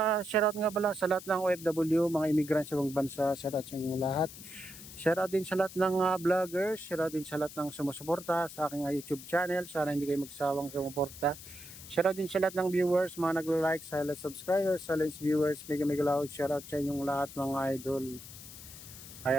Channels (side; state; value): left; noise; hiss, 15 dB below the sound